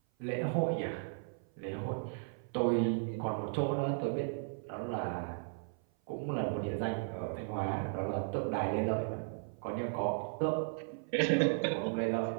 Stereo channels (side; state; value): left; silent; 54 dB below the other